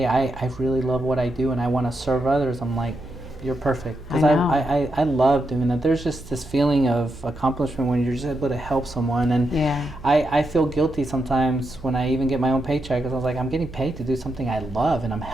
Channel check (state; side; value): noise; right; hum, 16 dB below the sound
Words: I really love what I do and I want to serve others, I'm like, you're perfect. Because I love doing that. There's just this feeling of accomplishment when you're just able to help someone. And I feel guilty sometimes when I even get my own paycheck, because I was like, I'm getting paid to do something I love and I'm